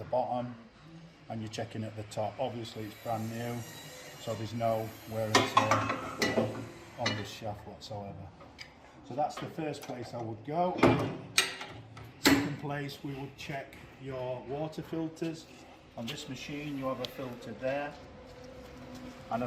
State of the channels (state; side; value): identical; both; correlation 1.00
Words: bottom and you're checking at the top. Obviously it's brand new, so there's no wear and tear on this shaft whatsoever. So that's the first place I would go. Second place, we would check your water filters. On this machine you have a filter there and a